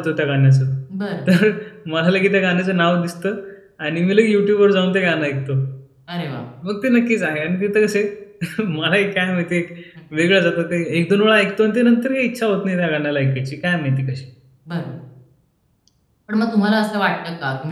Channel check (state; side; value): identical; both; correlation 1.00